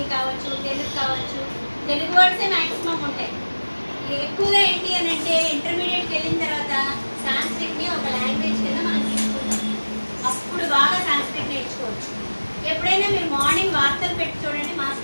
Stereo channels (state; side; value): inverted; both; correlation -1.00